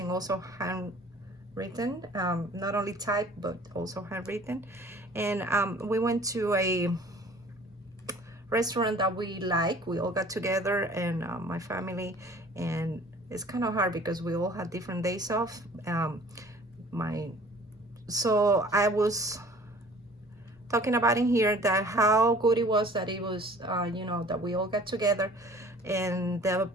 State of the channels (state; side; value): normal; both; correlation 0.50